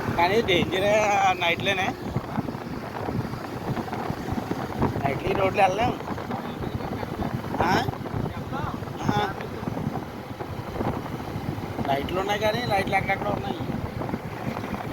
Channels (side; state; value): both; identical; correlation 1.00